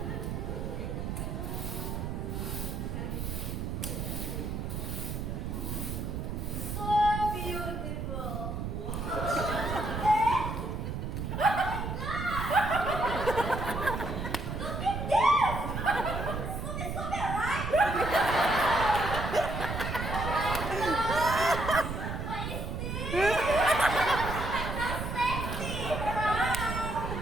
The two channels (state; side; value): noise; right; rumble, 4 dB below the sound